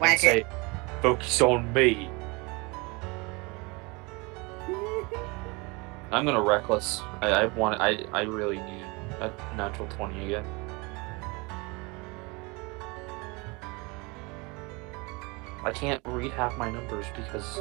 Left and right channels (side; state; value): left; quieter; 27.2 dB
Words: and say, "Focus on me." I'm gonna reckless. I really need a natural 20 again. I can't read half my numbers because